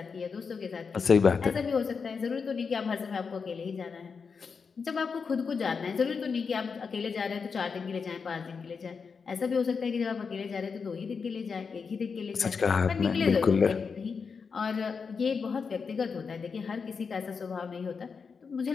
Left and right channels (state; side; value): quieter; right; 5.5 dB